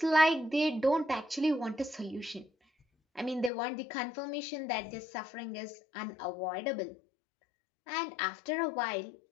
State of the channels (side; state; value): right; drops out; at 3.5 s